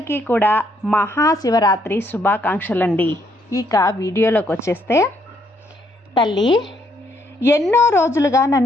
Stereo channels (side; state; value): both; normal; correlation 0.71